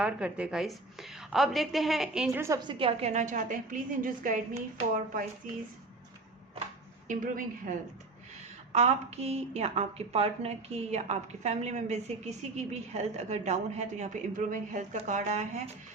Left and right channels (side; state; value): left; quieter; 3.3 dB